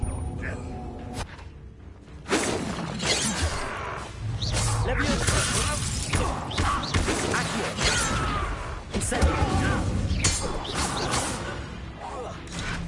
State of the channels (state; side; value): identical; both; correlation 1.00